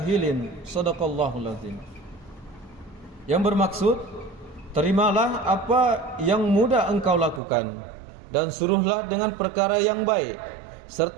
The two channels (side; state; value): left; drops out; at 7.4 s